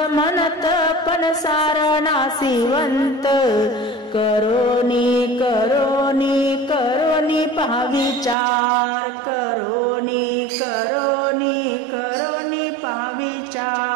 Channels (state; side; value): drops out; left; at 8.3 s